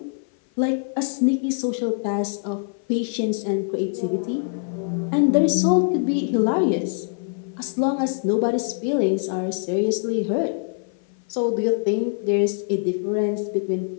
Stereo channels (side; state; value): right; silent; 56 dB below the other